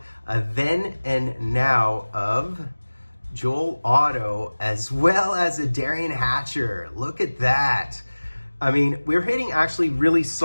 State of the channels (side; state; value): both; inverted; correlation -1.00